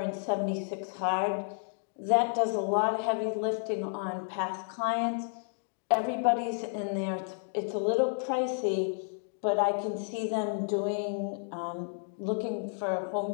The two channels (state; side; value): silent; right; digital silence